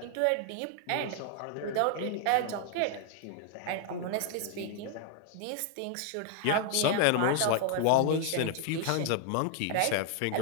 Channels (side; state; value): both; different; correlation 0.00